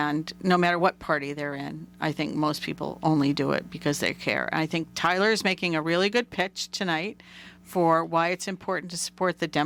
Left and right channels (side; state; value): both; identical; correlation 1.00